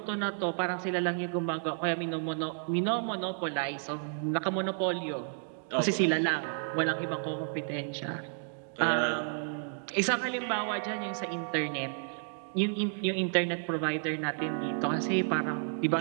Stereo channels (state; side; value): silent; left; 57 dB below the other